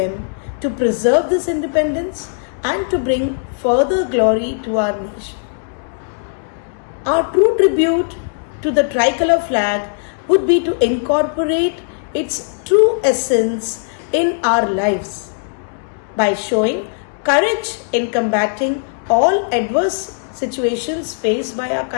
to preserve this independence and to bring further glory to our nation. Our true tribute to the tricolor flag would be to incorporate its true essence in our lives by showing courage in combating all adverse situations faced by our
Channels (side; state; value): right; silent; digital silence